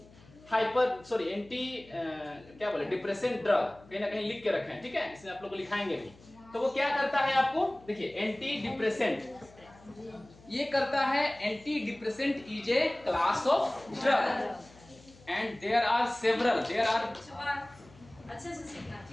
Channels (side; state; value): left; noise; hum, 24 dB below the sound